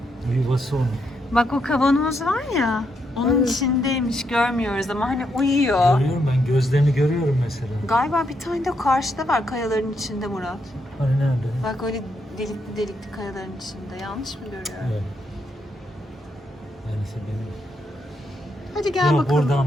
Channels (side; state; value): both; normal; correlation 0.79